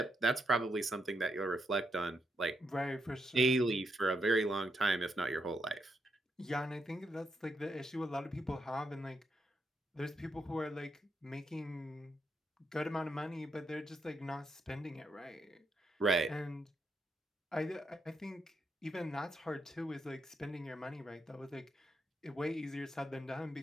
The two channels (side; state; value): both; normal; correlation 0.81